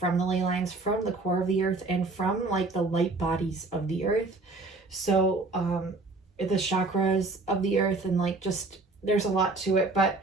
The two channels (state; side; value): quieter; left; 3.4 dB